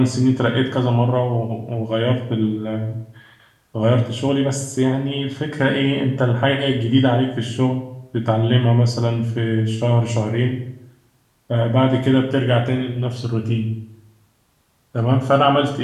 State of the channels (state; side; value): identical; both; correlation 1.00